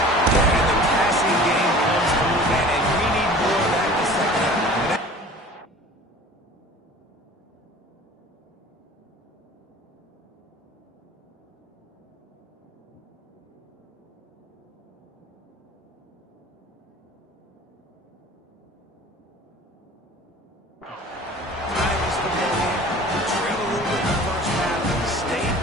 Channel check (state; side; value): normal; both; correlation 0.44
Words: And the passing game comes through, man, and we need more of that in the second half. Tigers football game. We trailed a little bit in the first half. Stayed